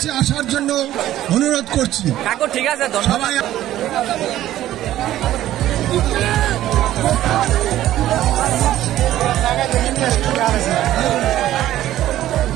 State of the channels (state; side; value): quieter; left; 13.5 dB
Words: আসার জন্য অনুরোধ করছি। কাকু ঠিক আছে, সবাই